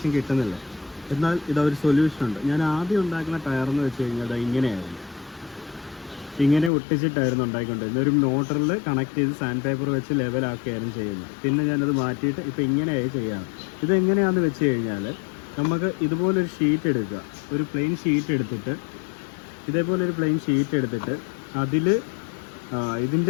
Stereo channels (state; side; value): drops out; right; at 6.7 s